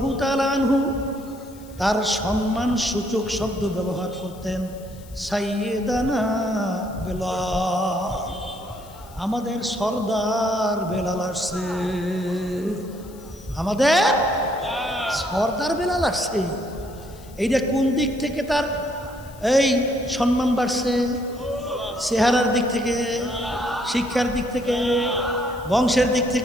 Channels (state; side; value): noise; left; hiss, 23 dB below the sound